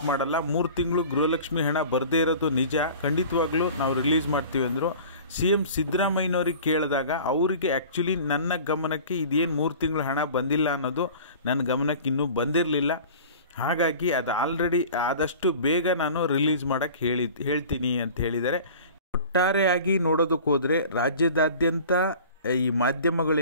ಮಾಡಲ್ಲ. 3 ತಿಂಗಳು ಗೃಹಲಕ್ಷ್ಮಿ ಹಣ ಬರದೇ ಇರೋದು ನಿಜ, ಖಂಡಿತವಾಗ್ಲೂ ನಾವು ರಿಲೀಸ್ ಮಾಡ್ತೀವಿ ಅಂದರು. CM ಸಿದ್ದರಾಮಯ್ಯನವ್ರಿಗೆ ಕೇಳಿದಾಗ ಅವರಿಗೆ ಆ್ಯಕ್ಚುಲಿ ನನ್ನ ಗಮನಕ್ಕೆ ಇದೇನು 3 ತಿಂಗಳು ಹಣ ಬಂದಿಲ್ಲ ಅನ್ನೋದು ನನ್ನ ಗಮನಕ್ಕೆ ಇನ್ನೂ ಬಂದಿರಲಿಲ್ಲ. ಹಾಗಾಗಿ ಅದು ಆಲ್ರೆಡಿ ಆದಷ್ಟು ಬೇಗ ನಾನು ರಿಲೀಸ್ ಮಾಡೋಕ್ಕೆ ಹೇಳ್ತೀನಿ ಅಂತ ಹೇಳಿದ್ದಾರೆ. ಒಟ್ಟಾರೆಯಾಗಿ ನೋಡೋದಕ್ಕೆ ಹೋದರೆ ರಾಜ್ಯದಾದ್ಯಂತ ಈ ಮಾಧ್ಯಮಗಳು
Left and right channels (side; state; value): both; inverted; correlation -0.42